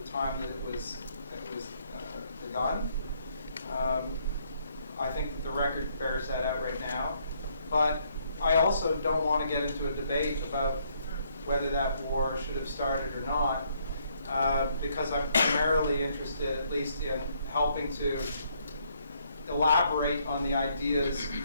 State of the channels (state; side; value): inverted; both; correlation -0.70